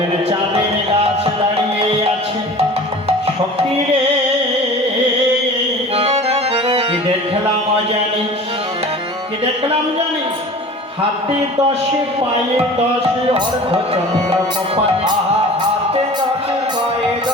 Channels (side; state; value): both; normal; correlation 0.40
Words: চাঁদের গাছ দাঁড়িয়ে আছে, সখী রে কি দেখলাম জানিস, কি দেখলাম জানিস, হাতে 10 পায়ে 10 অর্ধচন্দ্র কপালে। হাতে 10 পায়ে